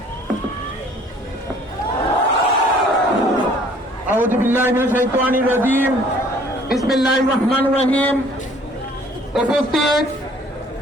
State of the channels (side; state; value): both; normal; correlation 0.56